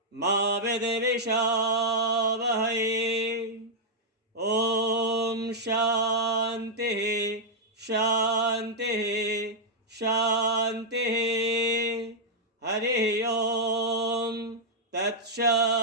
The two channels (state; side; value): normal; both; correlation -0.05